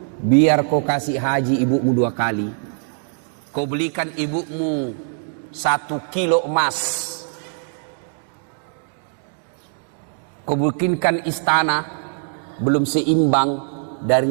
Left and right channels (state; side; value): silent; left; digital silence